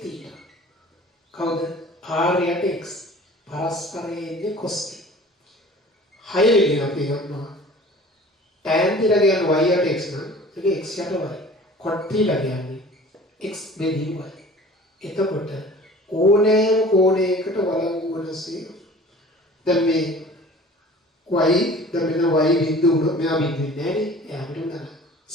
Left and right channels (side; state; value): both; normal; correlation 0.45